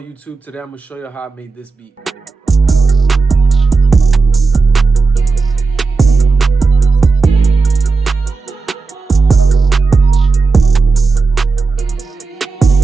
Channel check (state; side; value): quieter; left; 4.2 dB